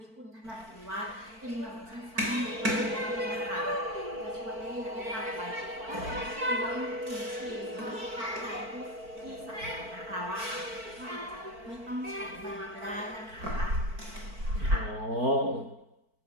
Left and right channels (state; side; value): late; left; 4.5 ms